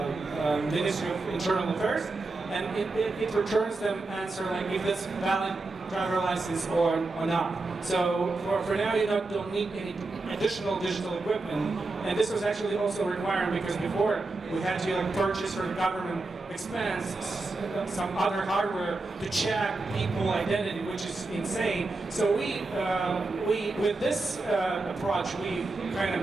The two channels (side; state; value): left; quieter; 3.4 dB